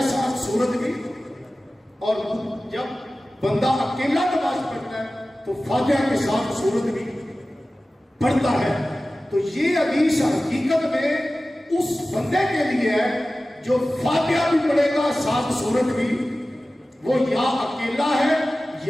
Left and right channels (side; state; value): both; normal; correlation 0.96